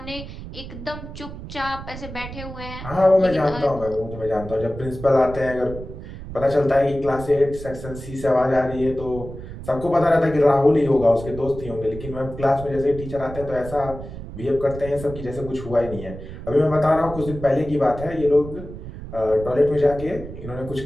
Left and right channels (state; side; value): noise; right; rumble, 11 dB below the sound